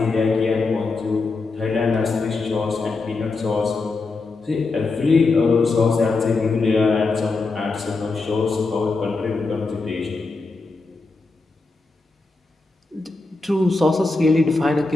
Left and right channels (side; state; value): right; quieter; 3.7 dB